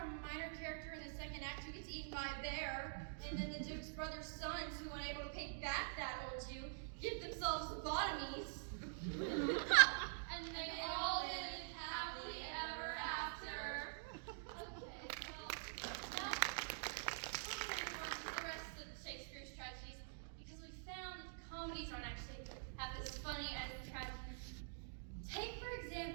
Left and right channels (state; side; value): silent; left; digital silence